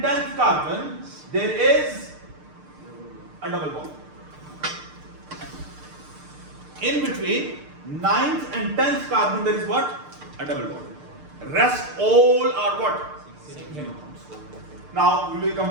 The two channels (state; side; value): late; left; 6.6 ms